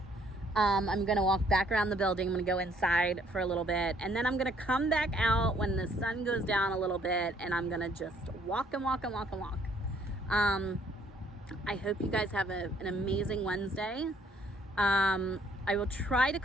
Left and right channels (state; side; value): normal; both; correlation 0.64